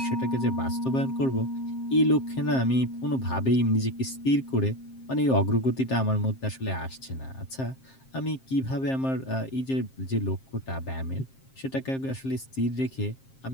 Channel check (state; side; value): late; right; 7.5 ms